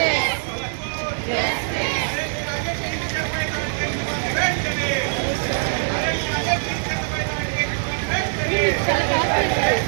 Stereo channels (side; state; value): left; silent; digital silence